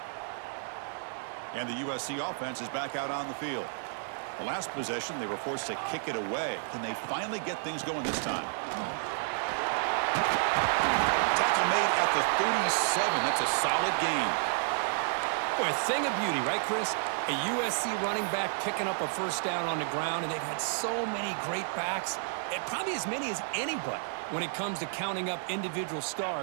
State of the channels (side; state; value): left; silent; 57 dB below the other